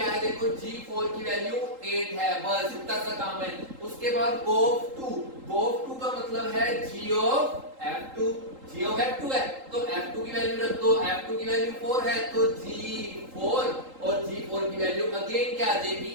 है, देखो g4 की वैल्यू 8 है। बस इतना सा काम है। उसके बाद गोफ 2 का मतलब है g of f2, g of f2 है, तो f2 की वैल्यू रख दो, f2 की वैल्यू 4 है, तो g4, और g4 की वैल्यू अगेन क्या आ जाएगी,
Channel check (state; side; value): late; left; 3.8 ms